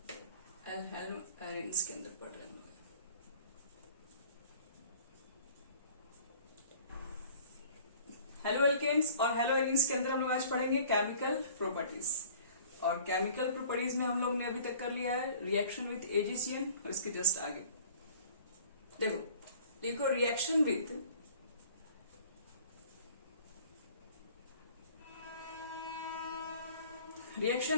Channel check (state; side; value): inverted; both; correlation -0.50